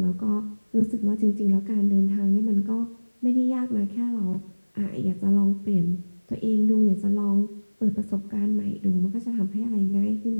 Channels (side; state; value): both; inverted; correlation -1.00